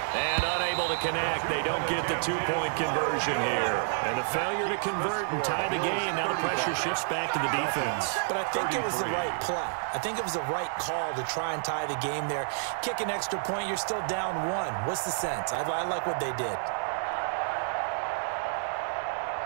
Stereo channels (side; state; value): left; silent; 58 dB below the other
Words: And unable to connect. They don't get the 2-point conversion here. And the failure to convert and tie the game. Now the pressure shifts back to the defense. But I think it was the right play. I think it was the right call to try and tie the game there. Kick an extra point, you're still down 1. What's the sense? I like what they did.